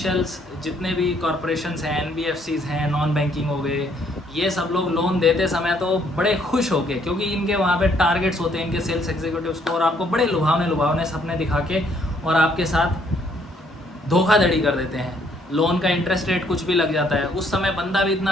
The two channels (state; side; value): normal; both; correlation 0.67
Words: जितने भी कॉरपोरेशंस हैं, एनबीएफसीज हैं, नॉन बैंकिंग हो गए, ये सब लोग लोन देते समय तो बड़े खुश होके, क्योंकि इनके वहाँ पे टारगेट्स होते हैं इनके सेल्स एग्जीक्यूटिव्स को, और आपको बड़े लुभावने सपने दिखा के और आपके साथ धोखाधड़ी कर देते हैं। लोन का इंटरेस्ट रेट कुछ भी लग जाता है, उस समय बंदा भी